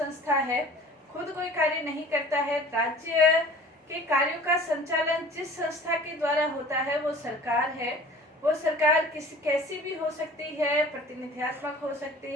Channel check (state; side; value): normal; both; correlation 0.46